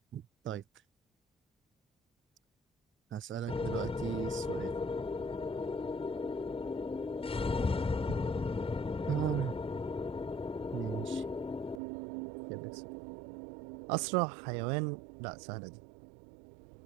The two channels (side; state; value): left; drops out; at 11.8 s